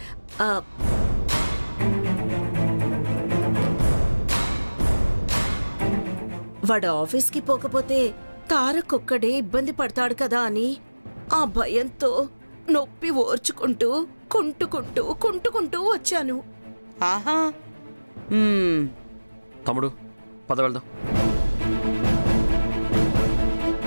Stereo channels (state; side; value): inverted; both; correlation -1.00